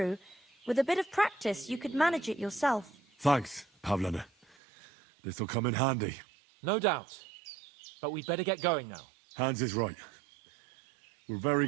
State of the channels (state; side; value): drops out; left; at 4.5 s